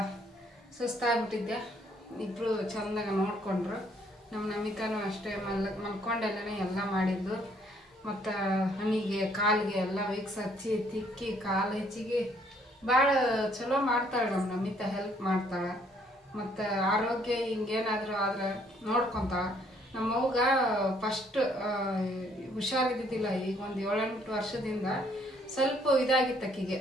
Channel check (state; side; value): normal; both; correlation 0.65